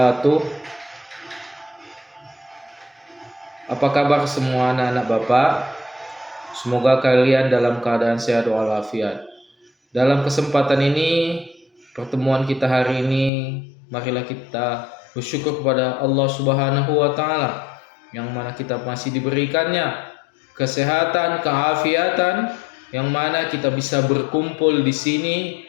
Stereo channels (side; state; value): right; drops out; at 13.3 s